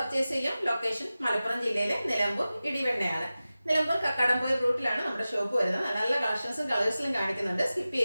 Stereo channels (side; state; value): both; inverted; correlation -0.96